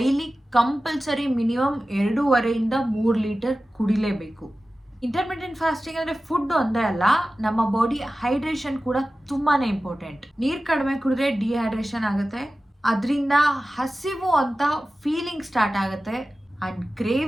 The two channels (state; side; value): normal; both; correlation 0.95